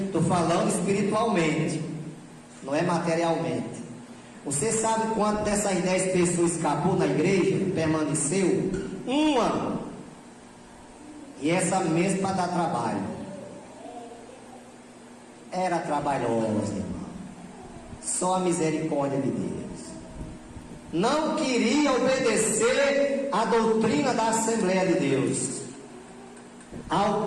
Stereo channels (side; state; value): both; identical; correlation 1.00